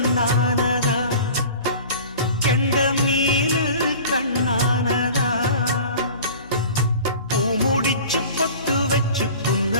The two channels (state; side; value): inverted; both; correlation -0.40